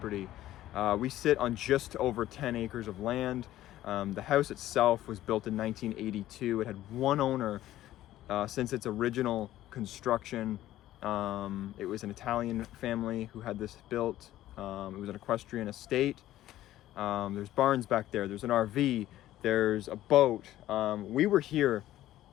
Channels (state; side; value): quieter; right; 14.0 dB